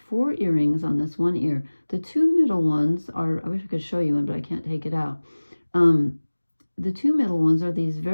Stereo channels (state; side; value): inverted; both; correlation -1.00